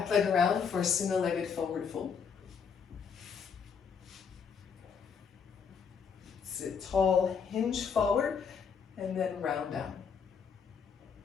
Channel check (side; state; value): right; quieter; 6.4 dB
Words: leg around for a single-legged forward fold. Sit tall, hinge forward, and then round down.